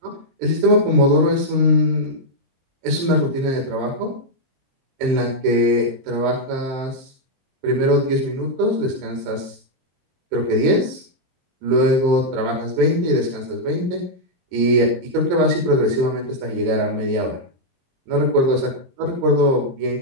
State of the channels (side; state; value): left; late; 23 ms